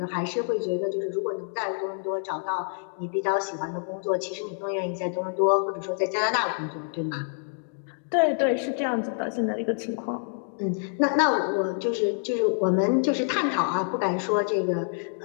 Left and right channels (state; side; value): silent; right; 60 dB below the other